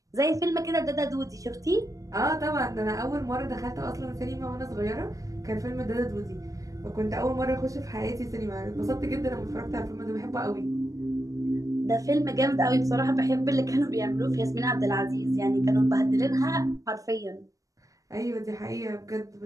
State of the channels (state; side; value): late; left; 0.16 ms